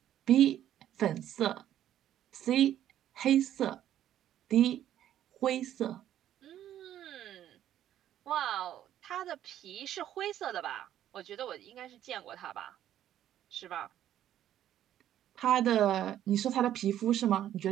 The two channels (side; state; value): left; quieter; 11.5 dB